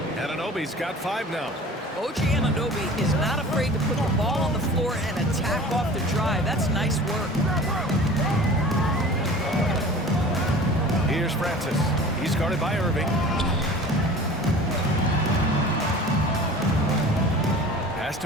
Anunoby's got 5 now. OG Anunoby is not afraid to put the ball on the floor and attack off the drive. That's nice work. Here's Francis. He's guarded by Irving. Pass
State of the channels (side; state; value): both; normal; correlation 0.41